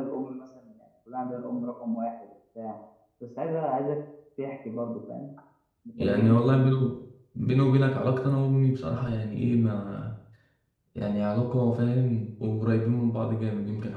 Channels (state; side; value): identical; both; correlation 1.00